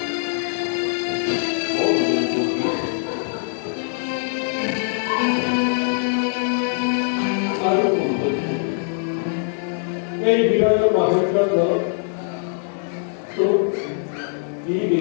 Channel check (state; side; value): silent; right; 64 dB below the other